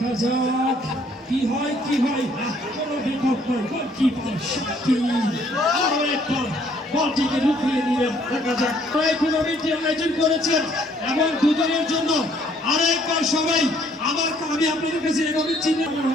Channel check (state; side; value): normal; both; correlation 0.63